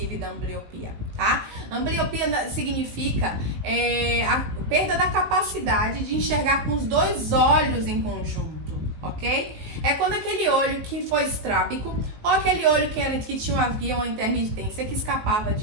da ambliopia, tá? Ambliopia significa a perda da capacidade de enxergar com os dois olhos em conjunto, ok? É quando aquele olho que foi estrábico ou aquele olho que havia uma intermitência que escapava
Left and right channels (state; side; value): late; left; 19 ms